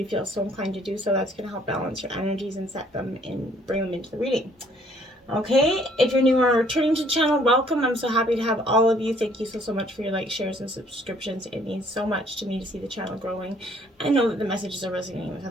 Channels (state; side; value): normal; both; correlation 0.62